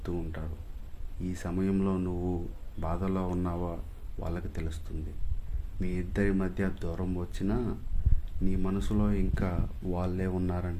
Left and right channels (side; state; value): both; identical; correlation 1.00